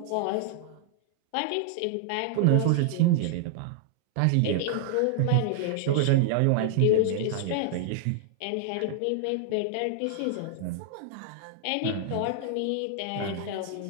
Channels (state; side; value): different; both; correlation -0.01